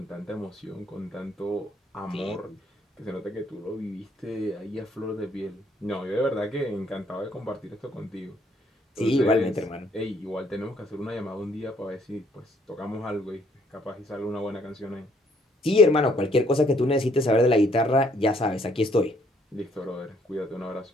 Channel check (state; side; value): normal; both; correlation 0.66